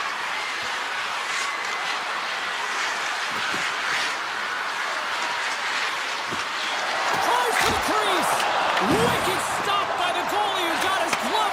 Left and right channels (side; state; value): both; identical; correlation 1.00